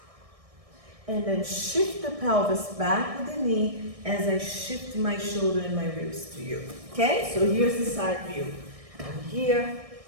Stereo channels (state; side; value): late; left; 1.6 ms